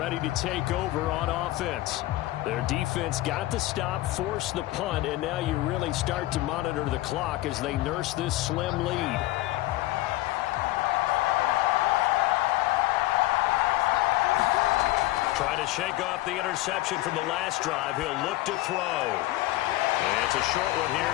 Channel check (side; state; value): right; quieter; 17.4 dB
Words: to take over on offense. Their defense got the stop, forced the punt, and now you really start to monitor the clock as they nurse this slim lead. Trying to shake off the interception from the last drive. He'll look to throw. And it's a short one here,